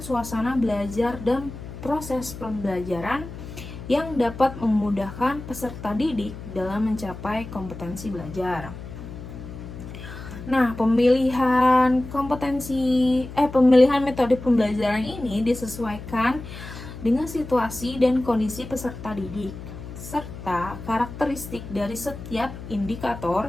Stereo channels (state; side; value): noise; left; hum, 12 dB below the sound